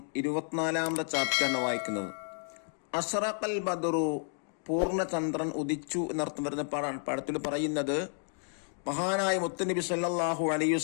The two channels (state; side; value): silent; right; 57 dB below the other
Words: 24ാമത്തെ ചാപ്റ്ററാണ് വായിക്കുന്നത്. അസ്റഖൽ ബദറു, പൂർണ്ണചന്ദ്രൻ ഉദിച്ചു എന്നർത്ഥം വരുന്ന പാഠത്തിൽ പറയുന്നത് മഹാനായ മുത്തുനബി സല്ലല്ലാഹു അലൈഹി